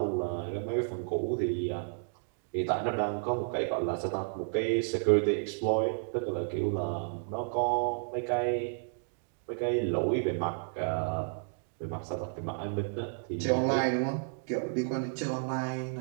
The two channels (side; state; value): left; silent; digital silence